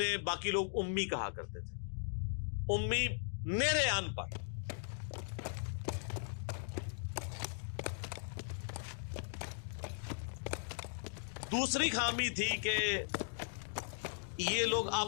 باقی لوگ امی کہا کرتے تھے. امی نیرے ان پڑھ. دوسری خامی تھی کہ یہ لوگ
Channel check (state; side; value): silent; right; digital silence